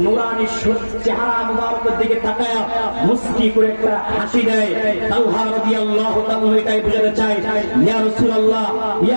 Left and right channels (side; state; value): both; inverted; correlation -1.00